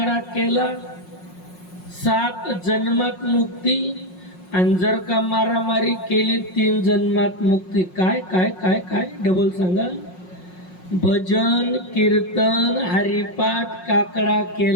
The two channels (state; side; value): late; right; 5.5 ms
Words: केला 7 जन्मात मुक्ती, आणि जर का मारामारी केली 3 जन्मात मुक्ती. काय काय काय काय डबल सांगा. भजन कीर्तन हरिपाठ काकडा